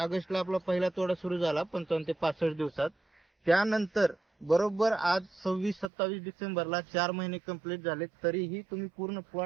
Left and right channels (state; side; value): drops out; left; at 5.9 s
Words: आपला पहिला तोडा सुरू झाला 55 ते 65 दिवसात। त्यानंतर बरोबर आज 26-27 डिसेंबरला 4 महिने कंप्लीट झाले, तरीही तुम्ही पूर्ण